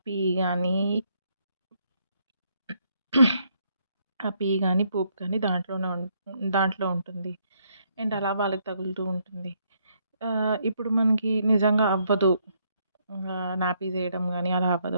గానీ, పూప్ గానీ దాంట్లో ఉంటుంది. అండ్ అలా వాళ్ళకి తగులుతూ ఉంటుంది. ఇప్పుడు మనకి నిజంగా అవ్వదు. నాపీస్ ఎయడం గానీ అలా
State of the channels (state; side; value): inverted; both; correlation -0.72